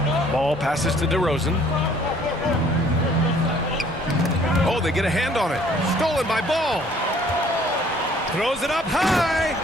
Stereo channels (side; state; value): both; normal; correlation 0.58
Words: Ball passes to DeRozan. Oh, they get a hand on it. Stolen by Ball. Throws it up high.